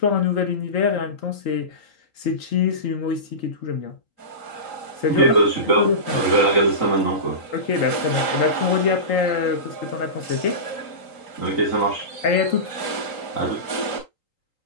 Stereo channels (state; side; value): late; right; 3.8 ms